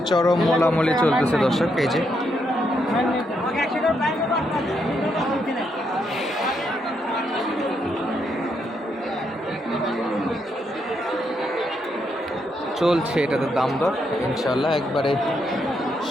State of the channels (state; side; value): normal; both; correlation 0.78